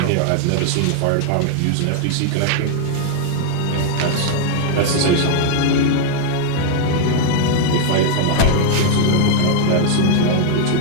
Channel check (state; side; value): different; both; correlation 0.00